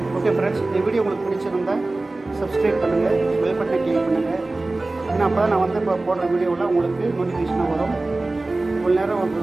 ஓகே ஃப்ரெண்ட்ஸ், இந்த வீடியோ உங்களுக்கு பிடிச்சிருந்தா சப்ஸ்கிரைப் பண்ணுங்கள், பெல் பட்டனை கிளிக் பண்ணுங்கள். ஏன்னா அப்போ தான் நான் வந்து இப்போ போடுற வீடியோவில் உங்களுக்கு நோட்டிஃபிகேஷனாக வரும். இவ்வளோ நேரம்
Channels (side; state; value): left; quieter; 3.1 dB